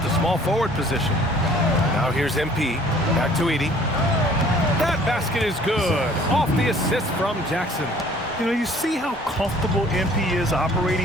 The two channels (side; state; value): both; normal; correlation 0.54